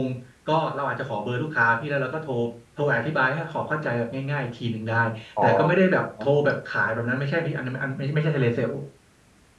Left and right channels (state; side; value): identical; both; correlation 1.00